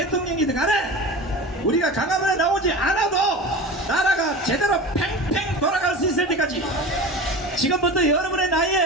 간에 우리가 강화문에 나오지 않아도 나라가 제대로 팽팽 돌아갈 수 있을 때까지 지금부터 여러분의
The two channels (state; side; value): normal; both; correlation 0.32